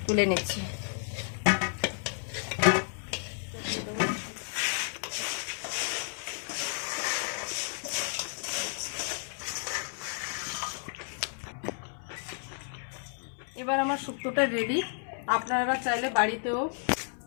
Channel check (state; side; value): silent; right; digital silence